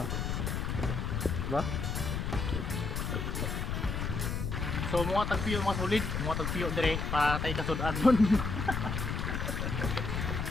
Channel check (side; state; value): left; noise; rumble, 2 dB below the sound